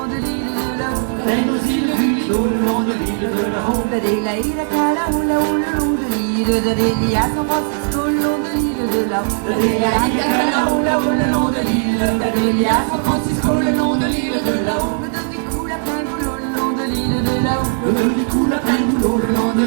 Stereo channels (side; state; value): left; silent; 68 dB below the other